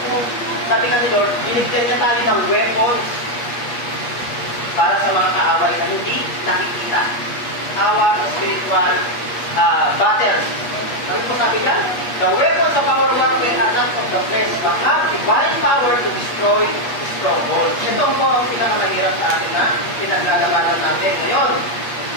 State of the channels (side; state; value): right; late; 8.4 ms